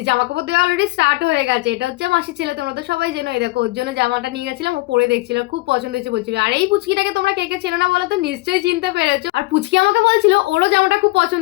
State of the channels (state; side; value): quieter; right; 22.2 dB